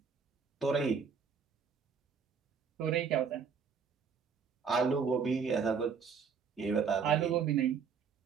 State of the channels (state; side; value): quieter; left; 6.1 dB